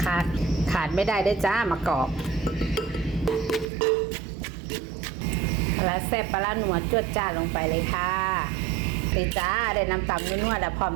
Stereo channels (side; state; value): left; drops out; at 3.7 s